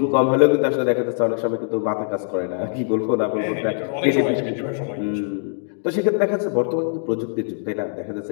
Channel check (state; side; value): silent; right; digital silence